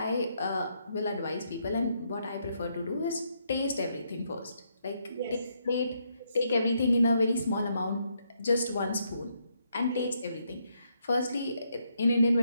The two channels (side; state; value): both; inverted; correlation -0.76